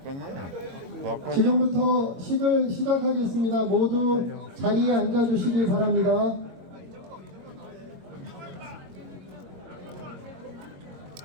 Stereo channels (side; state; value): left; late; 21 ms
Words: 지금부터 식을 시작하겠습니다. 모두 자리에 앉아 주시기 바랍니다.